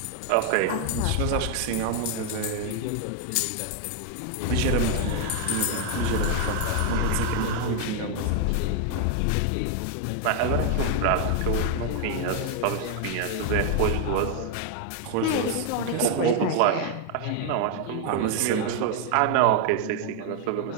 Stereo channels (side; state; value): both; different; correlation 0.00